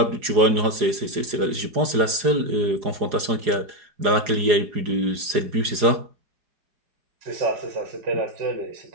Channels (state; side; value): late; left; 4.8 ms